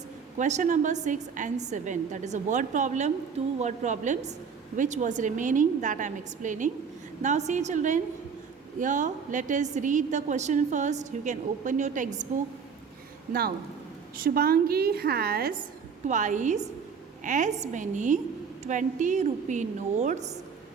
question number 6 and 7. That is a word problem, two word problems which was remaining that I am explaining. Now see children, here let us read the question first. You can open your textbook. Now Shubhangi has twice as many 20 rupee notes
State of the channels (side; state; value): left; quieter; 6.2 dB